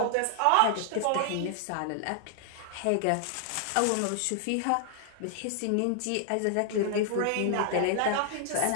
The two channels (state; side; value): different; both; correlation 0.00